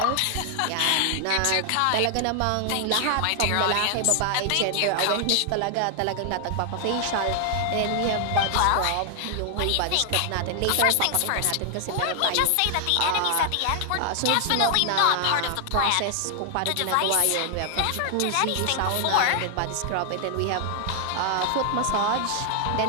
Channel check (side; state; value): both; different; correlation 0.00